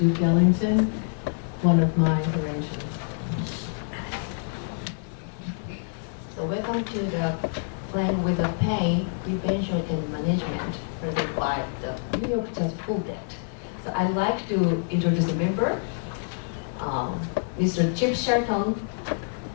Ellington, one of my arrangements. So welcome to the Playing with the Pain, Prevention and Management, presented by the New York Jazz Full Band. So I'd like to introduce a member, Mr. Chip Shelton,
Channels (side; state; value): right; silent; digital silence